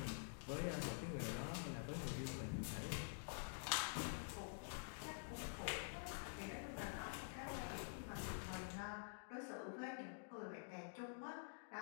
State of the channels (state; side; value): silent; right; digital silence